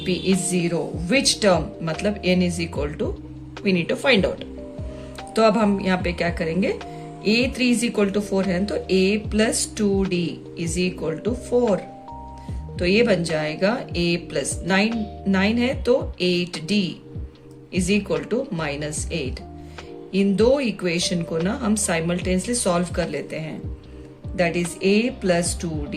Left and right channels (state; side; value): identical; both; correlation 1.00